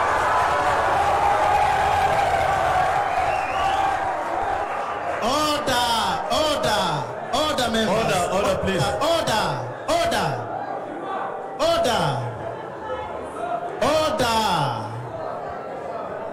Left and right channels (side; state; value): both; identical; correlation 1.00